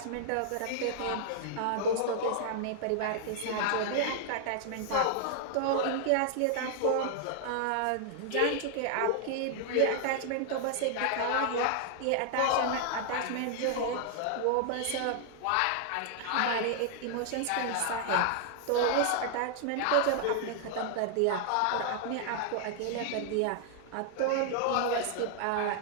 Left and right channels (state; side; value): different; both; correlation 0.00